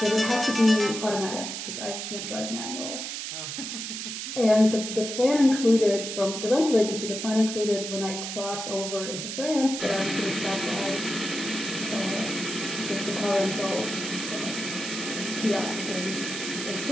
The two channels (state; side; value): noise; right; hiss, 6 dB below the sound